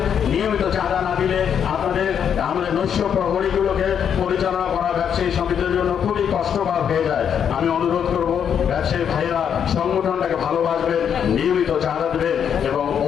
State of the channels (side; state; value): right; quieter; 8.1 dB